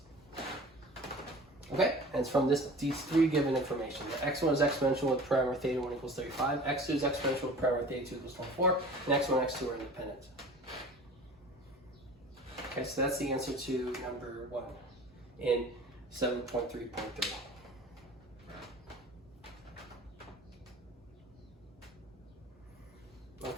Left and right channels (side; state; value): both; normal; correlation 0.41